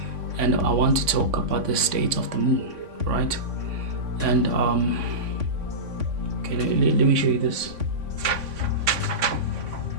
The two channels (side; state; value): left; late; 3.5 ms